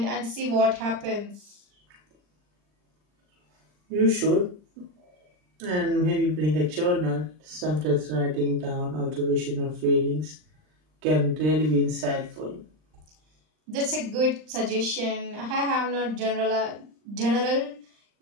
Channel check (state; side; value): late; left; 39 ms